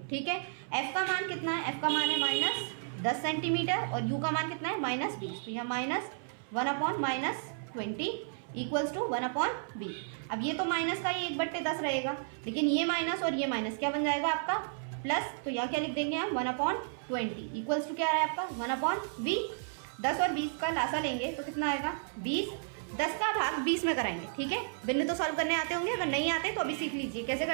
ठीक है, f का मान कितना है, f का मान है -10 सेंटीमीटर और u का मान कितना है, -20, तो यहाँ -1/-20 इक्वल्स टू 1/v। अब ये तो माइनस का, ये 1/10 रहेगा, लेकिन ये माइनस और ये माइनस क्या बन जाएगा आपका, प्लस। तो यहाँ क्या लिख देंगे हम, 1/20 इक्वल्स टू क्या आ रहा है आपका, 1/v। 10 और 20 का लासा लेंगे तो कितना आएगा, 20 10 का भाग 20 में कराएंगे, ठीक है। बिंदु तो सॉल्व करने आते होंगे, अगर नहीं आते तो अभी सीख लीजिए कैसे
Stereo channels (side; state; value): left; silent; 56 dB below the other